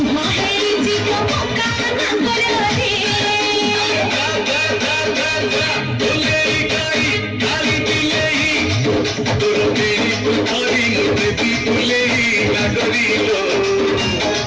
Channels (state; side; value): identical; both; correlation 1.00